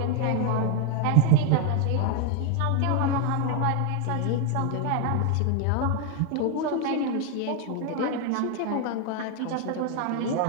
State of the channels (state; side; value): different; both; correlation 0.01